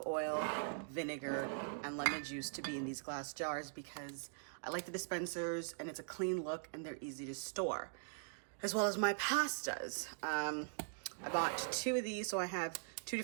oil, vinegar, and lemon juice to be in these glass jars because I like the dispensers and it's a clean look and they're easy to store. As well as my pastas. I bought 2 of these, so I have 2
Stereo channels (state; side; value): silent; left; digital silence